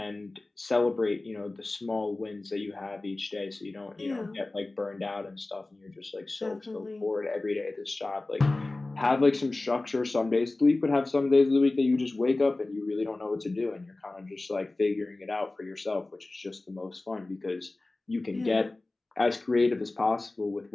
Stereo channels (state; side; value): quieter; right; 3.0 dB